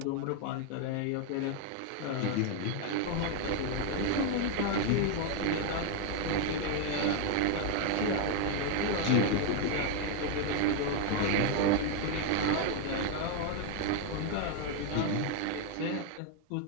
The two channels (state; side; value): different; both; correlation 0.01